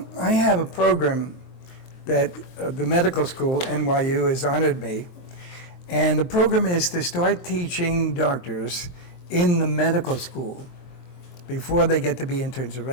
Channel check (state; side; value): late; right; 23 ms